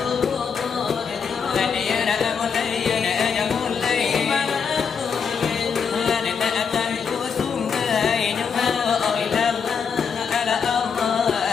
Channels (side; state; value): right; quieter; 6.3 dB